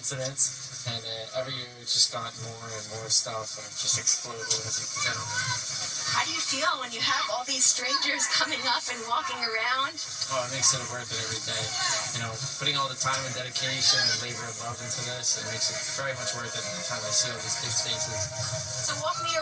And every year it's just gotten more and more stuff, and it just exploded, as you can tell. How do you feel when you have all these strangers coming up and walking around? Oh, it makes it worth it every day. You know, putting all the time and dedication and labor and love into this, it makes it very much worth it every time I see all these kids' faces. So walk me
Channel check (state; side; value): identical; both; correlation 1.00